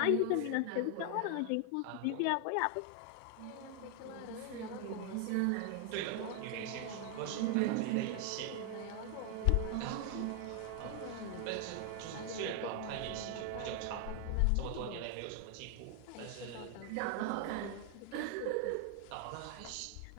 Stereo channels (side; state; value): both; different; correlation 0.00